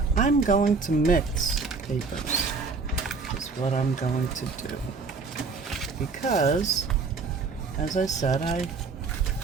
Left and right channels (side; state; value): left; quieter; 4.6 dB